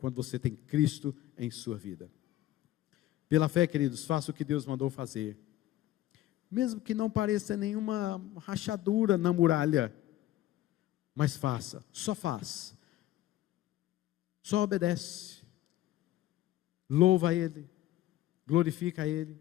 você tem Cristo em sua vida. Pela fé, queridos, faça o que Deus mandou fazer. Mesmo que não pareça nenhuma rachadura na muralha, mas faça, só faz. Só obedece. Louva a Ele, glorifica a Ele,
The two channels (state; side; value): quieter; right; 14.3 dB